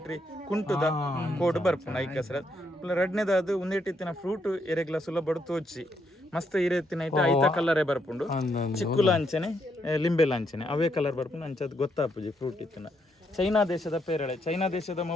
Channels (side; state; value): both; normal; correlation 0.76